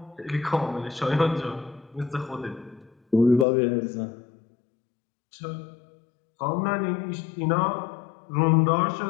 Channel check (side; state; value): right; drops out; at 3.5 s